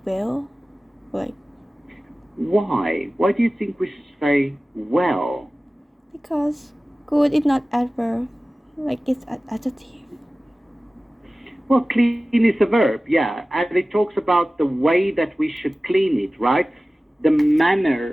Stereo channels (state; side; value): normal; both; correlation 0.96